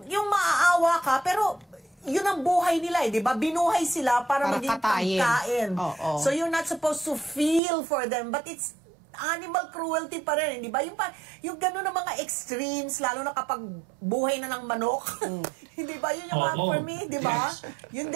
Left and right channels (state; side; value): drops out; left; at 7.6 s